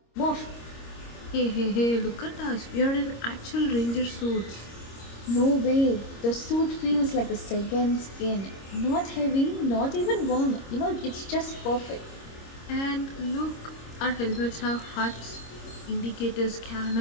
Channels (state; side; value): late; right; 26 ms